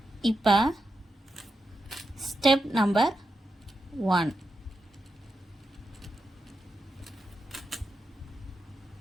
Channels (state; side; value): normal; both; correlation 0.87